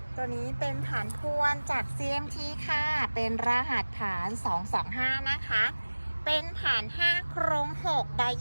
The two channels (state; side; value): inverted; both; correlation -1.00